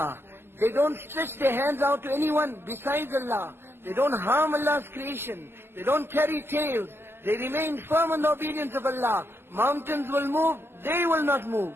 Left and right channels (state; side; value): late; left; 0.12 ms